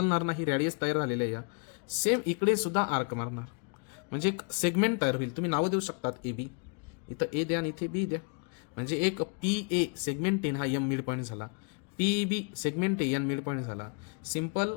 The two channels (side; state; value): right; quieter; 36.9 dB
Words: नाही. रेडियस तयार झालेलं आहे. या सेम इकडे सुद्धा आर्क मारणार, म्हणजे एक सेगमेंट तयार होईल. तुम्ही नावं देऊ शकतात ए बी. इथं ए द्या आणि इथे बी द्या. म्हणजे एक पी ए सेगमेंट एन हा एम मिड पॉईंट झाला. P B segment A N mid point झाला. सिंपल.